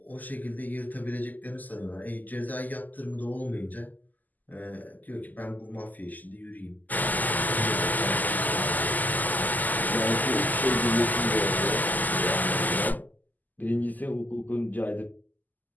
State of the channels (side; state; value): right; late; 0.083 ms